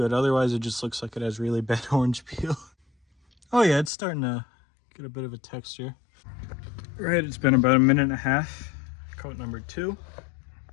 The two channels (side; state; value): right; drops out; at 3.9 s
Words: otherwise it just looks like it has really bad orange peel. Oh yeah, it's starting to get a bit of a texture. Right, it's been about a minute and a half. Coat number 2.